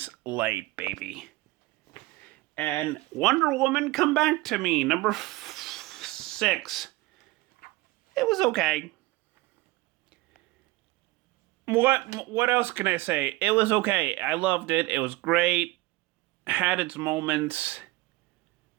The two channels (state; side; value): quieter; left; 20.4 dB